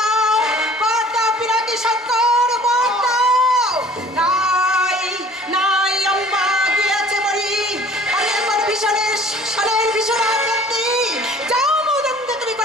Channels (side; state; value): both; normal; correlation 0.50